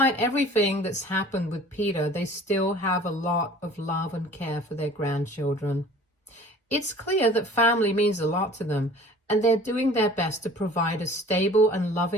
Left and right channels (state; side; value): normal; both; correlation 0.47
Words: everything that's happened with Peter, they still have a lot of love and care for their grandchildren. It's clear that family means a lot to them, and they're doing their best to provide a stable and